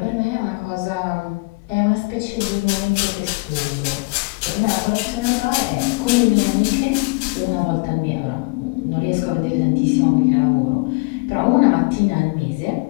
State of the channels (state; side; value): quieter; right; 28.1 dB